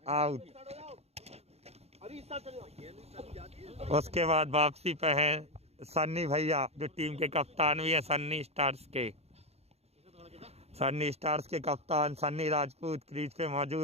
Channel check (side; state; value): left; late; 0.30 ms